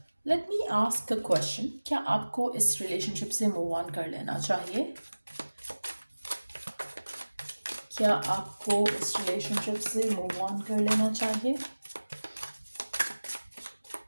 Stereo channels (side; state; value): both; inverted; correlation -1.00